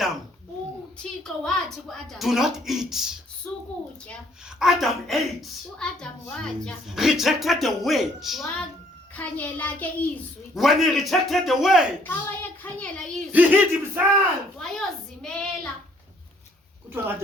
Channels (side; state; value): both; normal; correlation 0.63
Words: uThixo wathi kuAdam, do not eat. sukutya. Adam ate, uAdam watya, rejected the word. wakhanyela ke izwi. When he rejected the word, Xa wayekhanyela izwi, he hid himself. wayozimela. Kuthiwa